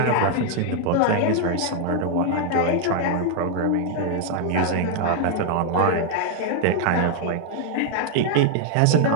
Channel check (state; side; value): different; both; correlation 0.00